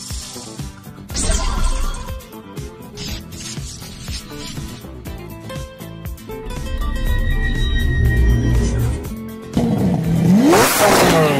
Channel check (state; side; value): identical; both; correlation 1.00